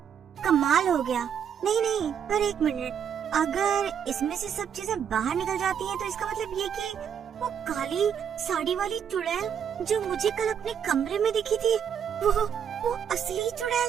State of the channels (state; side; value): quieter; left; 8.1 dB